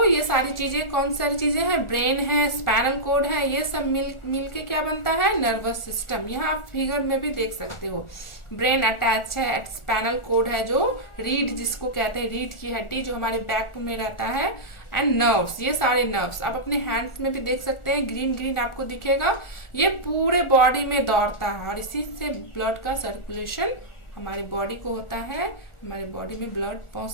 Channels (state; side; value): late; right; 1.4 ms